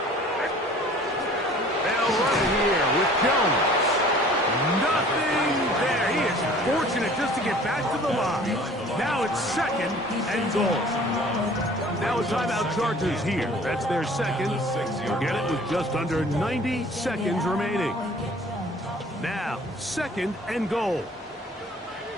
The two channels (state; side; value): normal; both; correlation 0.50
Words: They'll run it here with Jones. Nothing there. He is fortunate just to get back to the line. Now it's 2nd and goal. Now a timeout Chargers here. That's their second. You'll get it with just under 90 seconds remaining. Now, 2nd and goal.